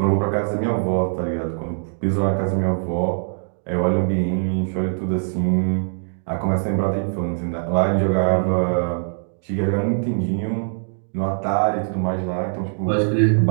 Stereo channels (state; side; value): silent; left; digital silence